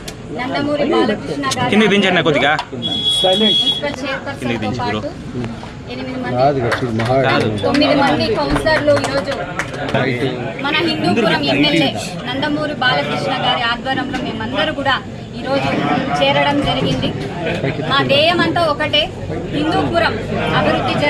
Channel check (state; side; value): identical; both; correlation 1.00